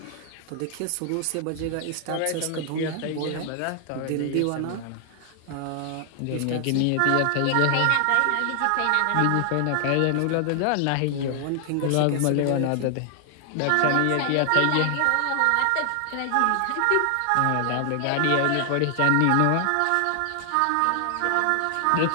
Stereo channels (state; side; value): different; both; correlation 0.00